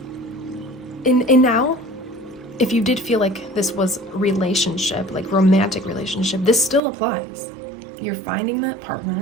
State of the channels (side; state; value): left; drops out; at 6.8 s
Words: now, if you did feel like this was relationship, like romantic relationship, this still applies. You're finding that